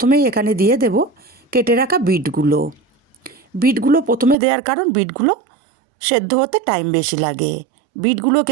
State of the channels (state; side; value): drops out; left; at 4.4 s